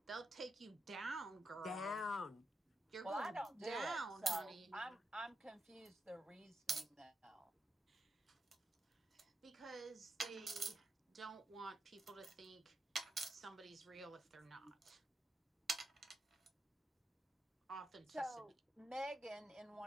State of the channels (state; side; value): normal; both; correlation 0.85